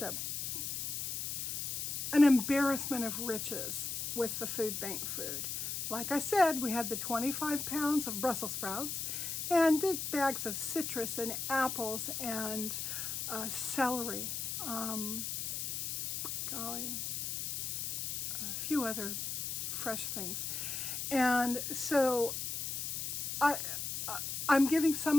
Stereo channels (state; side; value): noise; left; hiss, 3 dB below the sound